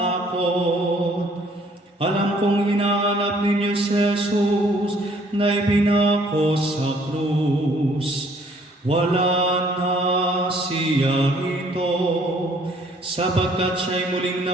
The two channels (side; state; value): both; normal; correlation 0.61